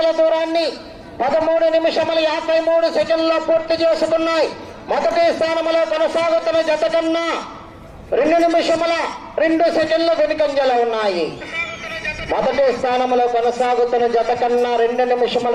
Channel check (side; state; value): both; identical; correlation 1.00